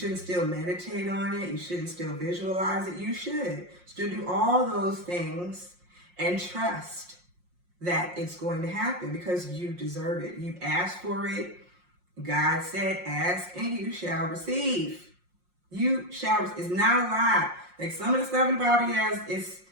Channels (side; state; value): left; late; 5.6 ms